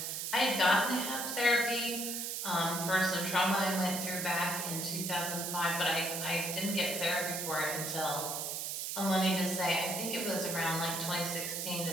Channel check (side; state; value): right; noise; hiss, 3 dB below the sound